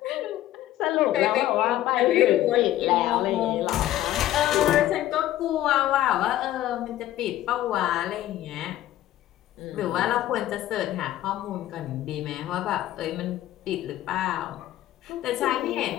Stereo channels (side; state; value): right; quieter; 13.8 dB